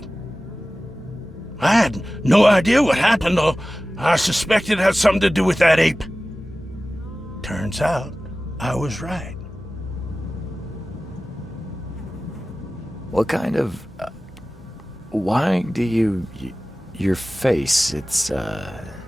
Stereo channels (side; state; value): both; normal; correlation 0.96